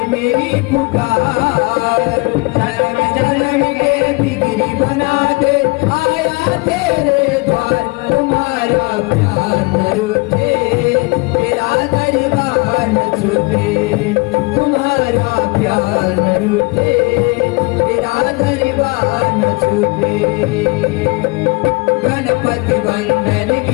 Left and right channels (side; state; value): right; quieter; 26.5 dB